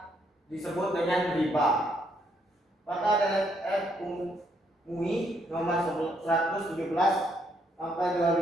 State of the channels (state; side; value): normal; both; correlation 0.72